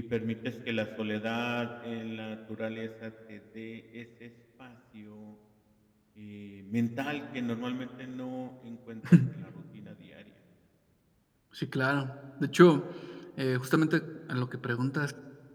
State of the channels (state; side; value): identical; both; correlation 1.00